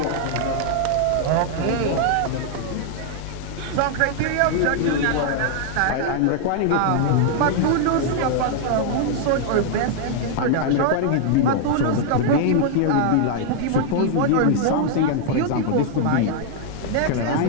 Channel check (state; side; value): different; both; correlation 0.00